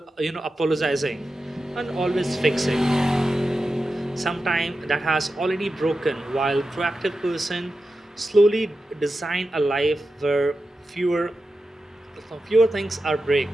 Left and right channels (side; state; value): both; normal; correlation 0.92